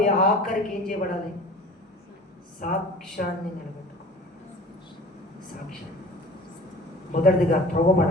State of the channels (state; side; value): normal; both; correlation 0.43